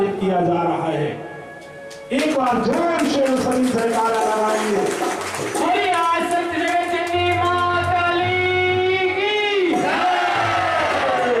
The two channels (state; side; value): identical; both; correlation 1.00